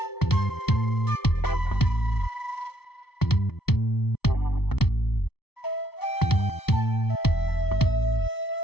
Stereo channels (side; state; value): right; late; 0.96 ms